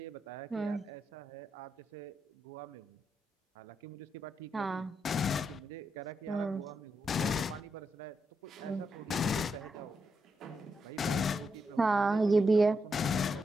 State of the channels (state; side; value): normal; both; correlation 0.83